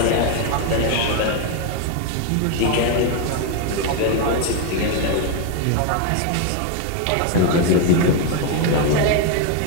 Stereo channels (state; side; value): different; both; correlation 0.01